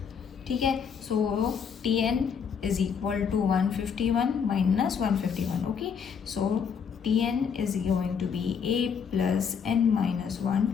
ठीक है, so Tn is equal to 151 minus 151. Okay, so Tn is going to be a plus n minus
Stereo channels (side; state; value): right; quieter; 6.7 dB